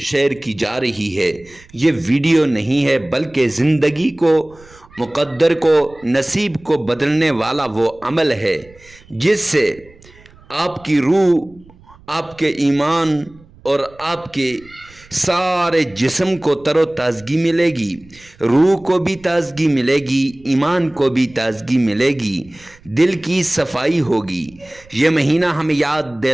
شیئر کی جا رہی ہے، یہ ویڈیو نہیں ہے بلکہ زندگی کو، مقدر کو، نصیب کو بدلنے والا وہ عمل ہے جس سے آپ کی روح، آپ کے ایمان اور آپ کے سارے جسم کو تر و تازگی ملے گی، روح کو بھی تازگی ملے گی، ایمان کو بھی تازگی ملے گی، دل کی صفائی ہوگی۔ یہ مہینہ ہمیں یاد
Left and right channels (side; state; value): right; noise; rumble, 26 dB below the sound